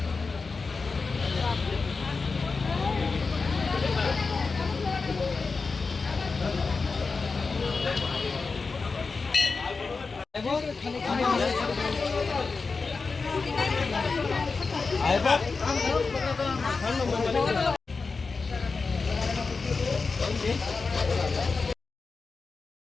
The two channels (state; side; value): quieter; right; 4.4 dB